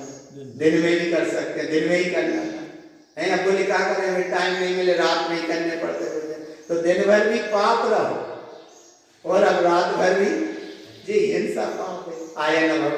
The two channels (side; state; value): both; identical; correlation 1.00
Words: दिन में भी कर सकते हैं, दिन में ही करना है ना। बोले क्या करें हमें टाइम नहीं मिले, रात में ही करने पड़ते भोजन, तो दिन भर भी पाप रहो और अब रात भर भी जी हिंसा पाप है। आया ना